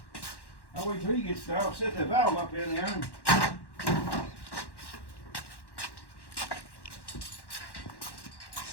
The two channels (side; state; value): right; late; 1.1 ms